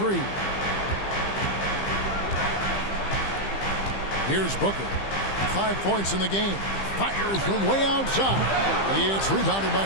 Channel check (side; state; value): right; late; 15 ms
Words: Here's Booker. 5 points in the game. Fires from way outside. It's rebounded by